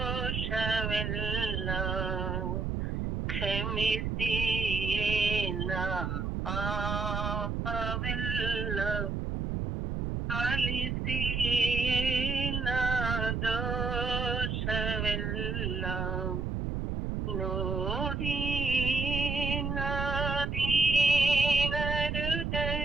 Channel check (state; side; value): noise; right; rumble, 1 dB below the sound